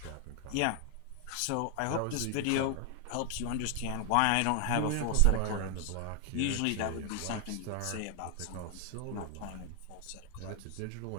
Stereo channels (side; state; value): both; different; correlation 0.00